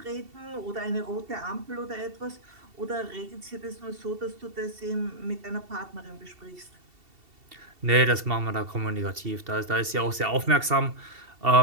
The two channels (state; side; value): late; left; 2.7 ms